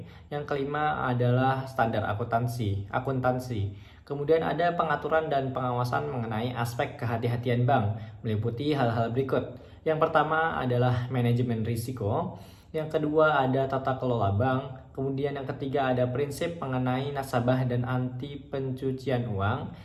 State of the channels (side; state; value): both; identical; correlation 1.00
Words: Yang kelima adalah standar akuntansi. Kemudian ada pengaturan dan pengawasan mengenai aspek kehati-hatian bank, meliputi hal-hal berikut. Yang pertama adalah manajemen risiko. Yang kedua ada tata kelola bank. Kemudian yang ketiga ada prinsip mengenai nasabah dan anti pencucian uang.